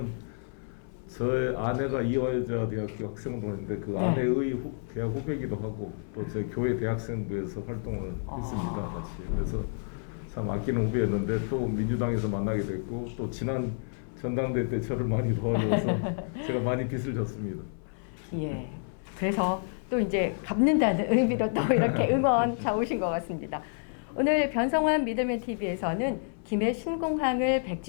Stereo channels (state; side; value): silent; right; 55 dB below the other